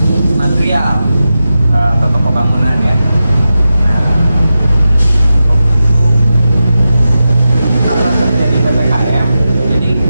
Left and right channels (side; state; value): both; inverted; correlation -0.91